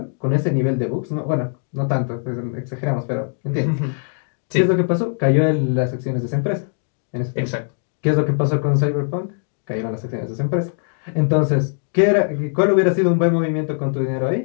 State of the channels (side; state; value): right; silent; digital silence